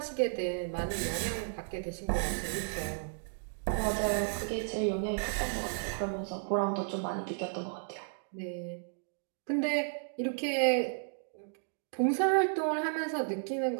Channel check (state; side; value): silent; left; digital silence